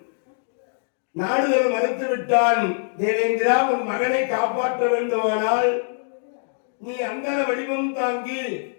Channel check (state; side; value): silent; right; 63 dB below the other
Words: நாடுகள் மறுத்து விட்டான். தேவேந்திரா, உன் மகனை காப்பாற்ற வேண்டுமானால் நீ அந்த வடிவம் தாங்கி